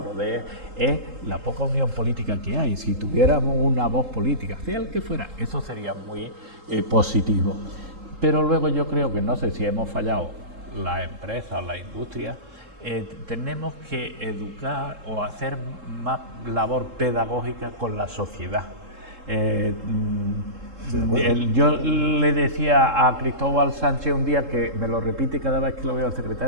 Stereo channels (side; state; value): left; late; 3.7 ms